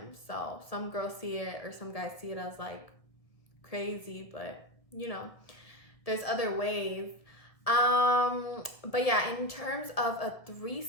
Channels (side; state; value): right; late; 1.6 ms